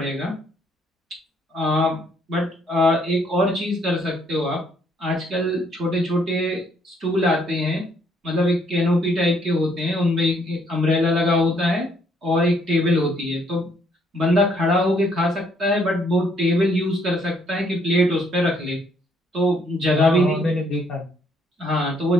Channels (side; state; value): both; normal; correlation 0.68